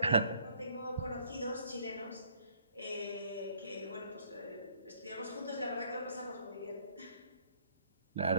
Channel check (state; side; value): inverted; both; correlation -0.62